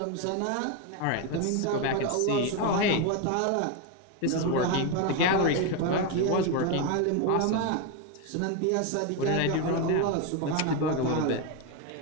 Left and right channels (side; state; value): both; different; correlation 0.02